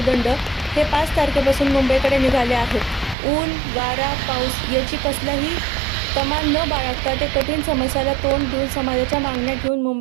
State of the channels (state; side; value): drops out; left; at 3.2 s